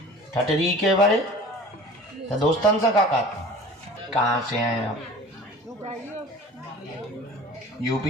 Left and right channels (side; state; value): both; normal; correlation 0.42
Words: ठटरी के बारे तो दोस्तन से का कहाँ से हैं आप?